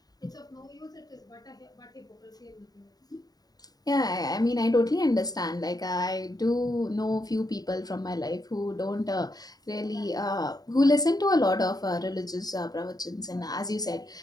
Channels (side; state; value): right; late; 0.19 ms